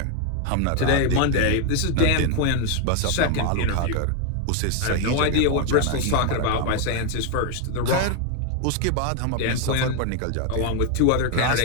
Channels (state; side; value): different; both; correlation 0.01